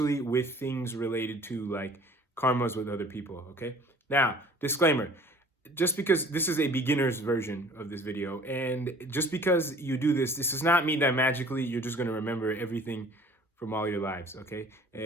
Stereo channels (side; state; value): both; normal; correlation 0.50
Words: with things related to like karmas with other people, okay? Now, disclaimer, just because this is a beginner's version of this video, and just because you do this, this does not mean that magically you're just going to remember everything from all your lives, okay?